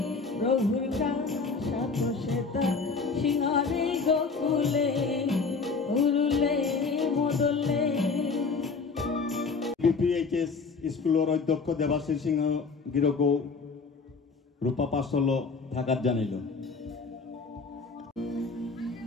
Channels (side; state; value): right; quieter; 4.6 dB